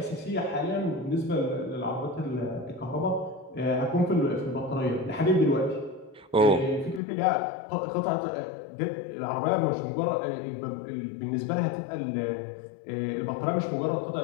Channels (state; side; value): drops out; right; at 7.0 s